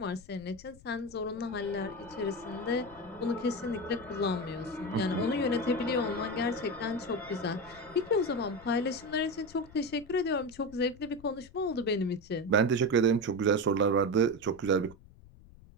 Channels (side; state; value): left; noise; rumble, 22 dB below the sound